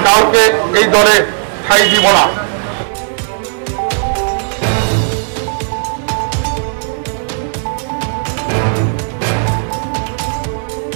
কাউকে এই দলে ঠাঁই দিব না।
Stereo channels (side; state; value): left; silent; digital silence